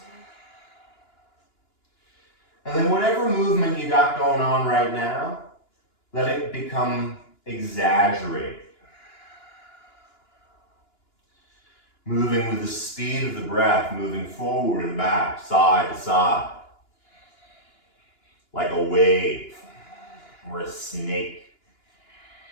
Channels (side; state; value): right; late; 2.9 ms